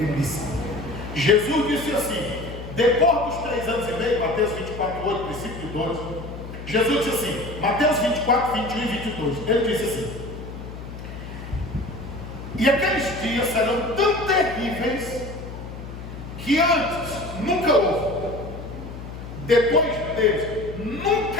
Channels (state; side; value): noise; left; hum, 11 dB below the sound